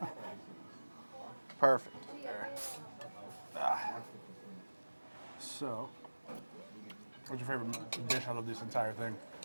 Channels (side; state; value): both; inverted; correlation -1.00